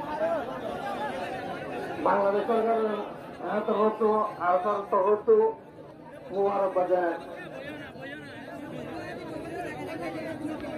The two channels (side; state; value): both; identical; correlation 1.00